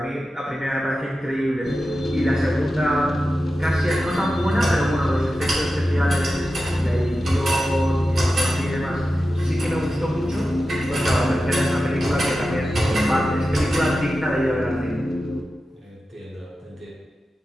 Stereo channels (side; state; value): both; normal; correlation 0.92